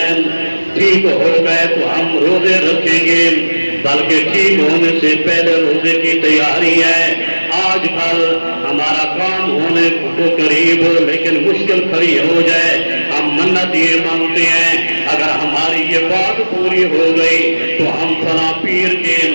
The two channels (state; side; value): inverted; both; correlation -1.00